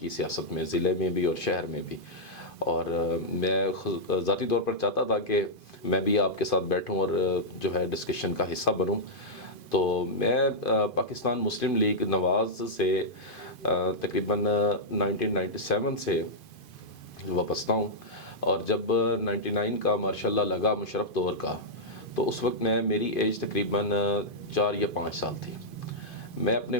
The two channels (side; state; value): right; late; 2.5 ms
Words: سیاست میں، ضلع میں بھی اور شہر میں بھی۔ اور میں ذاتی طور پر چاہتا تھا کہ میں بھی آپ کے ساتھ بیٹھوں اور جو ہے ڈسکشن کا حصہ بنوں۔ تو میں پاکستان مسلم لیگ نواز سے تقریباً 1997 سے وابستہ ہوں، اور جب 99 کا ماشاء اللہ لگا مشرف دور کا، تو اس وقت میری ایج تقریباً 4 یا 5 سال تھی۔ میں اپنے